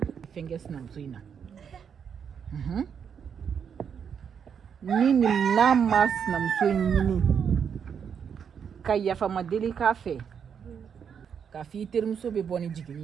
fɛn kɛ sinamuso in na ni n'a ma sinamuso in ɲini ka yafama deli k'a fɛ k'a fɔ i terimuso bɛ bɔ ni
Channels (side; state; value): left; quieter; 7.3 dB